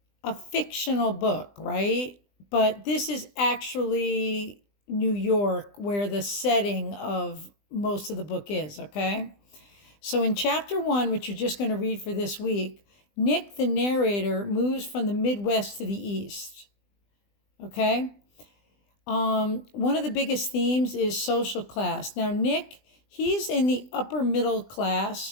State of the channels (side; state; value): right; late; 20 ms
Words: a fictional book, right? But this is actually New York, where the setting of most of the book is, okay? So in chapter one, which you're just going to read for this week, Nick, the narrator, moves from the Midwest to the East, okay? One of the biggest themes is social class. Now, Nick, he's in the upper middle